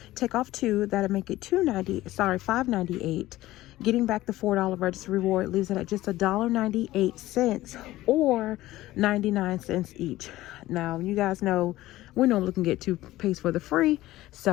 Take off 2, that'll make it $5.98. Getting back the $4 register reward leaves it at just $1.98 or 99 cents each. Now, you guys know we normally can get toothpaste for the free,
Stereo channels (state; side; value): quieter; right; 16.4 dB